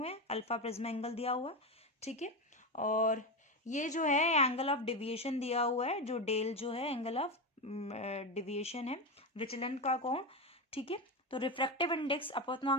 हैं, अल्फा प्रिज्म एंगल दिया हुआ है, ठीक है। और ये जो है एंगल ऑफ डिविएशन दिया हुआ है, जो डेल जो है एंगल ऑफ डिविएशन है, विचलन का कोण, ठीक है। तो रिफ्रैक्टिव इंडेक्स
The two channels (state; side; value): normal; both; correlation 0.15